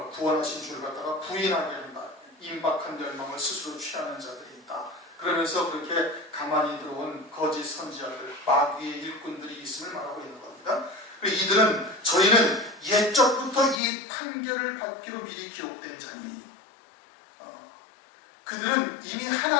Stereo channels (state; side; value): drops out; right; at 13.8 s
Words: 구원하신 주를 갖다가 부인하게 한다. 임박한 열망을 스스로 취하는 자들이 있다. 그러면서 그렇게 가만히 들어온 거짓 선지자들, 마귀의 일꾼들이 있음을 말하고 있는 겁니다. 이들은 저희는 옛적부터 이 판결을 받기로 미리 기록된 자니 그들은 이미